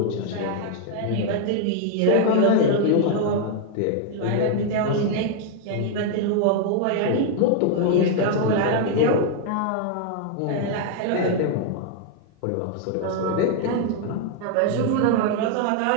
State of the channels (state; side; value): different; both; correlation 0.00